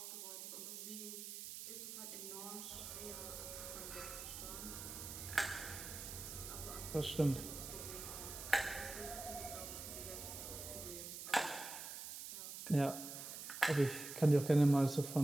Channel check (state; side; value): noise; right; hiss, 8 dB below the sound